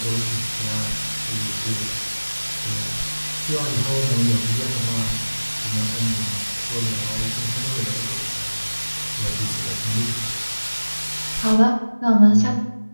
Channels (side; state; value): both; inverted; correlation -1.00